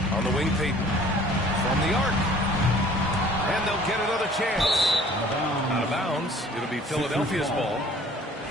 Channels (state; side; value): normal; both; correlation 0.52